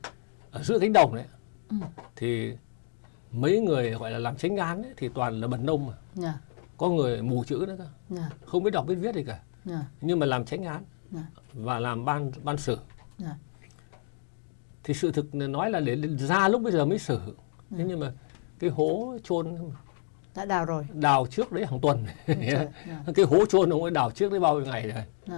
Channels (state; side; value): silent; right; 58 dB below the other